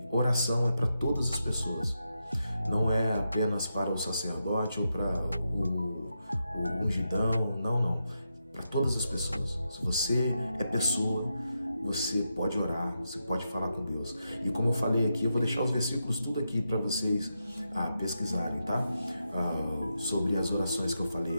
oração é para todas as pessoas, não é apenas para o sacerdote ou para o ungidão, não, para todas as pessoas. Se você é pessoa, você pode orar, você pode falar com Deus. E como eu falei aqui, eu vou deixar os versículos tudo aqui para vocês pesquisarem, tá? Sobre as orações que eu falei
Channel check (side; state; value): both; inverted; correlation -0.85